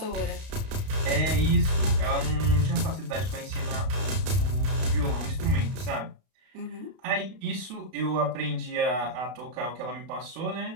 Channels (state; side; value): late; left; 32 ms